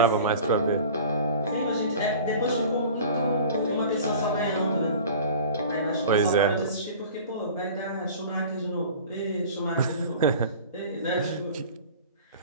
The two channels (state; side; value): inverted; both; correlation -0.41